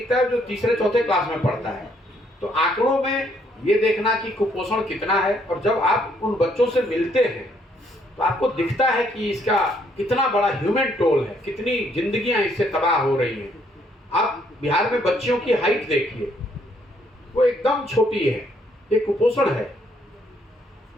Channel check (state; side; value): normal; both; correlation 0.69